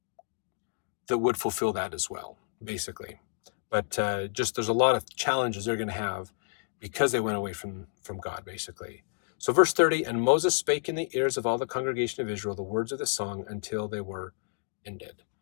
would fulfill that as well, basically. But just there's a lot of challenges they're going to have because they went away from God, basically. So verse 30, and Moses spake in the ears of all the congregation of Israel the words of the song until they were ended.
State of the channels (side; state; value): right; silent; digital silence